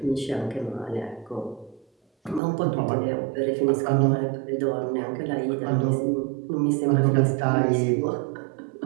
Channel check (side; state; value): left; drops out; at 2.4 s